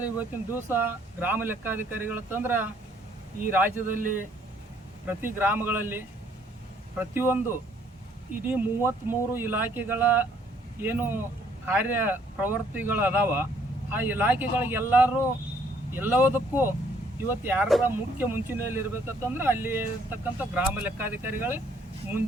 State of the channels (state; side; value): normal; both; correlation 0.64